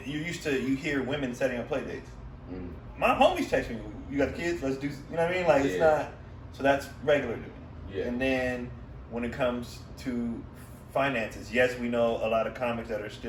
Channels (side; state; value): both; identical; correlation 1.00